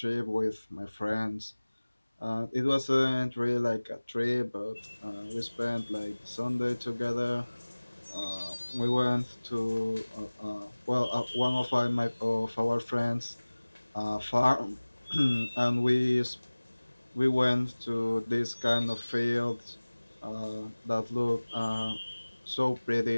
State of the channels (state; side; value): inverted; both; correlation -1.00